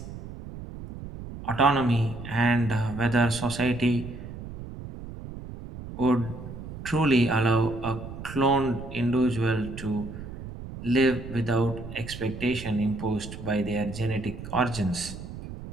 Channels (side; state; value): right; noise; rumble, 11 dB below the sound